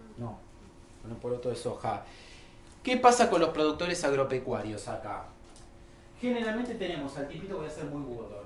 No, con el poroto de soja. ¿Qué pasa con los productores agropecuarios acá? Generalmente tenemos al tipito, voy a ser muy burdo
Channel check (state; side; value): identical; both; correlation 1.00